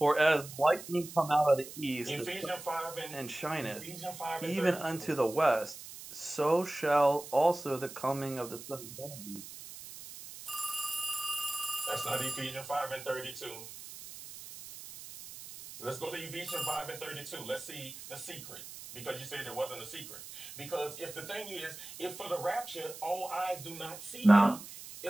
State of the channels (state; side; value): noise; right; hiss, 13 dB below the sound